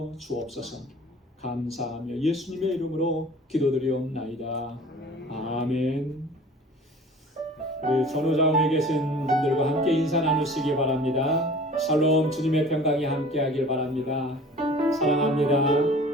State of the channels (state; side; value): normal; both; correlation 0.45